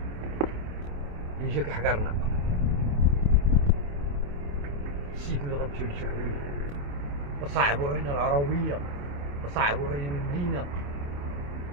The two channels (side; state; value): left; late; 28 ms